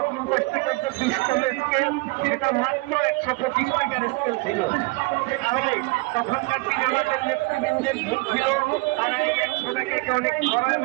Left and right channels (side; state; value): left; quieter; 24.9 dB